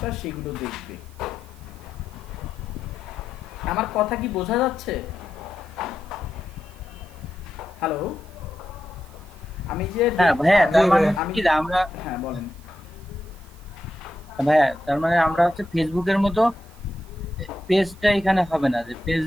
সেগুলো দেখবে। আমার কথা কি বোঝা যাচ্ছে? হ্যালো, আমি যে ভাইয়া তার মানে কি আমরা হ্যাঁ বলেন ভাইয়া, তার মানে আমরা হচ্ছে ফেসবুকের মতো পেজটা এখানে হবে না, যে পেজ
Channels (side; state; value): right; noise; hiss, 27 dB below the sound